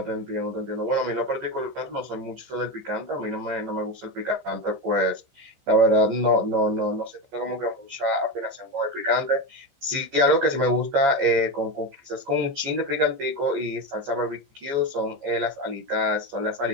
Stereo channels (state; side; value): late; left; 14 ms